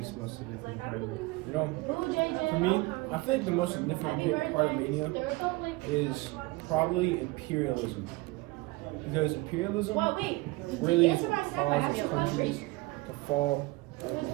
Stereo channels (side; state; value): left; quieter; 22.4 dB